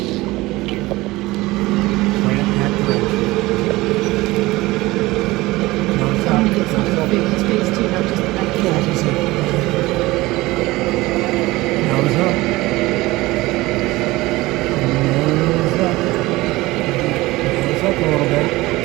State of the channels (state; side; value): quieter; left; 19.8 dB